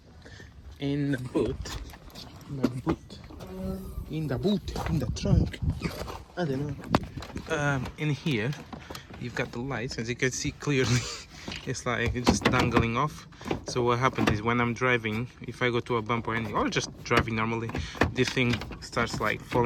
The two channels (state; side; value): identical; both; correlation 1.00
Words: In the boot, in the trunk, I don't know. In here, you've got the lights, as you can see clearly. It's like it's just dangling off. So what happens is when I'm driving, if I go to a bump or anything, or just driving normally, this thing starts like